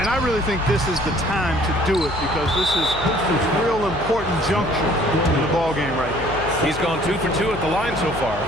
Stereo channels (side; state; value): left; noise; hum, 12 dB below the sound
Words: I really think this is the time to do it because this is a real important juncture in the ballgame right here. He's gone 2 for 2 at the line so far.